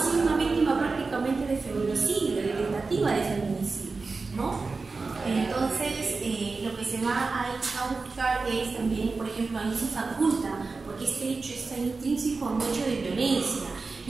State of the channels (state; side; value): quieter; left; 4.1 dB